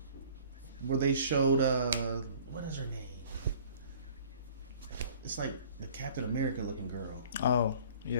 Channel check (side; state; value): both; inverted; correlation -0.50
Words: where they showed what is her name? It's like the Captain America looking girl. Oh,